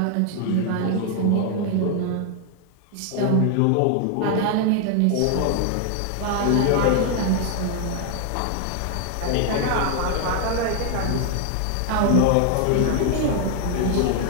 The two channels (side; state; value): both; different; correlation 0.00